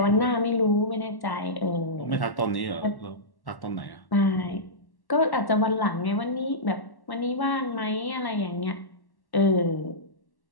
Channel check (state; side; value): late; right; 1.1 ms